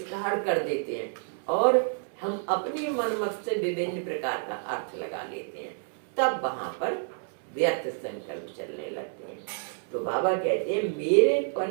कर देते हैं और हम अपनी मनमत से विभिन्न प्रकार का अर्थ लगा लेते हैं, तब वहां पर व्यर्थ संकल्प चलने लगते हैं। तो बाबा कहते हैं मेरे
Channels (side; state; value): left; silent; 59 dB below the other